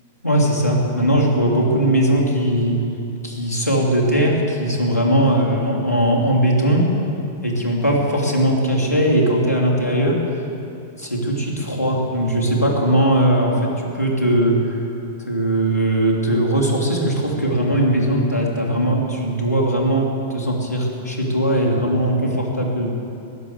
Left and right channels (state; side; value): inverted; both; correlation -0.39